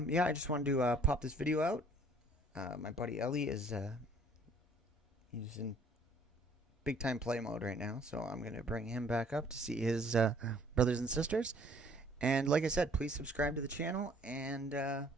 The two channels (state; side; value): normal; both; correlation 0.57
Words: just wanted to pop this video out. My buddy Ellie is he's in big time play mode right now, so I'm gonna bring him back up to see his brothers and sisters. And like I said, please subscribe to the channel and